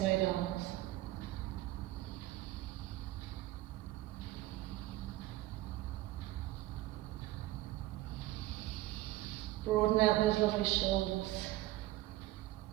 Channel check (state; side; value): quieter; left; 16.6 dB